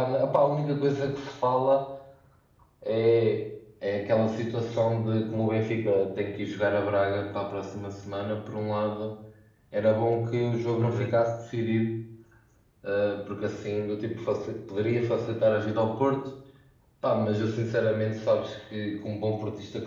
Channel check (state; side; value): identical; both; correlation 1.00